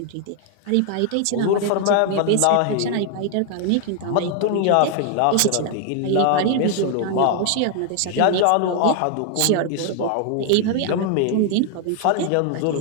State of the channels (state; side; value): different; both; correlation 0.00